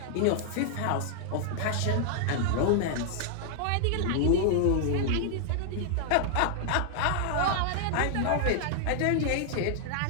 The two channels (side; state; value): both; different; correlation -0.01